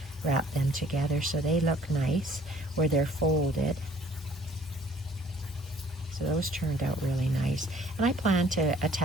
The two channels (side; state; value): both; normal; correlation 0.57